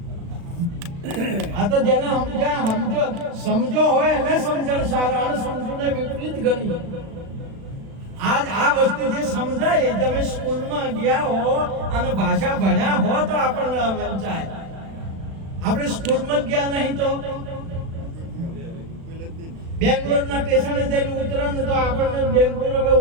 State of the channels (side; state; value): left; late; 36 ms